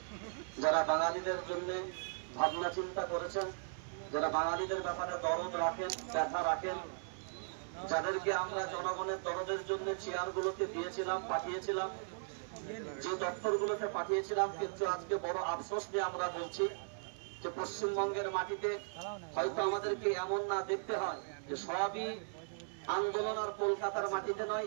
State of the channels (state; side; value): silent; left; 53 dB below the other